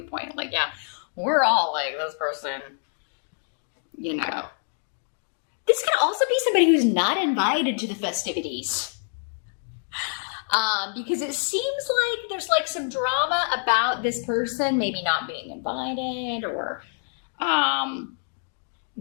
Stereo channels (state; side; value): silent; right; 60 dB below the other